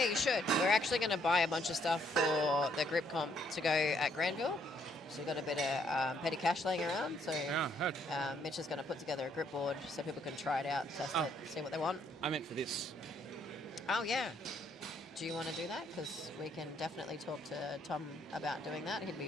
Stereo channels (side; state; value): both; normal; correlation 0.70